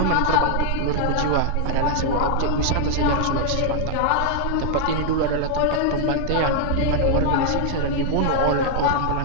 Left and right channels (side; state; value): both; different; correlation -0.01